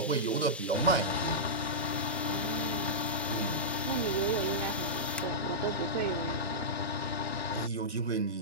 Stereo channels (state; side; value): normal; both; correlation -0.13